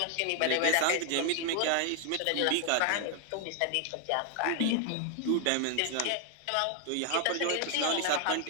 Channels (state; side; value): different; both; correlation 0.00